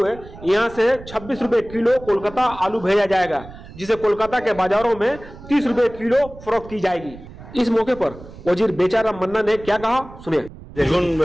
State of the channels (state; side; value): noise; right; rumble, 17 dB below the sound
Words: यहाँ से 26 रुपए किलो कोलकाता आलू भेजा जाएगा, जिसे कोलकाता के बाजारों में 30 रुपए किलो फरोख्त की जाएगी। इस मौके पर वजीर बेचारा मन्ना ने क्या कहा, सुनिए। দেখুন,